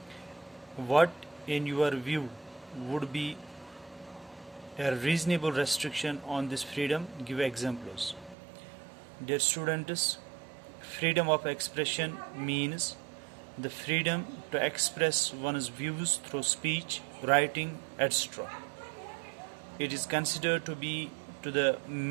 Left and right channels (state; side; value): drops out; left; at 8.3 s